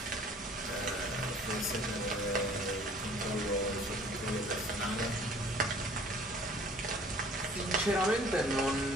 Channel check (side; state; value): both; normal; correlation 0.52